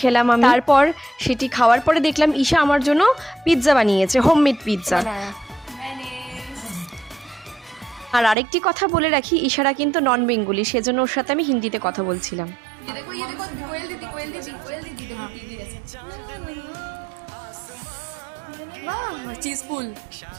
খেলাম আমি। তারপর সেটি খাওয়ার পরে দেখলাম ঈশা আমার জন্য পিৎজা বানিয়েছে, হোমমেড পিৎজা। আর আরেকটি কথা বলে রাখি, ঈশারা কিন্তু নন বেঙ্গলি, সেজন্য ওর সাথে আমি হিন্দিতে কথা বলছিলাম। चीज फुल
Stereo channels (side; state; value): left; drops out; at 8.3 s